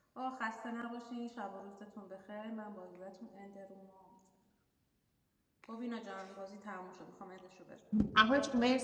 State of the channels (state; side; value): identical; both; correlation 1.00